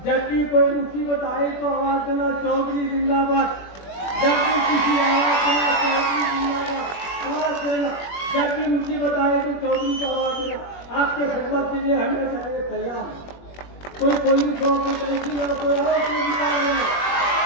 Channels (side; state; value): right; late; 21 ms